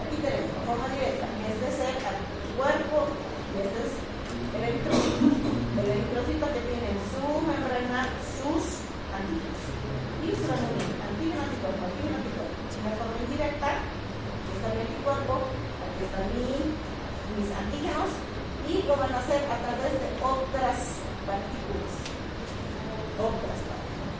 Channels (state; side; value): identical; both; correlation 1.00